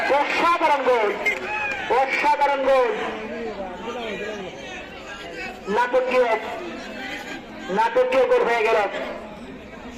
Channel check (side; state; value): both; identical; correlation 1.00